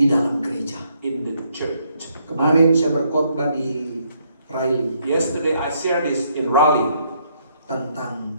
dalam gereja. in the church. Kemarin saya berkhotbah di Riley Yesterday I shared this in Raleigh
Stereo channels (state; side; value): inverted; both; correlation -0.72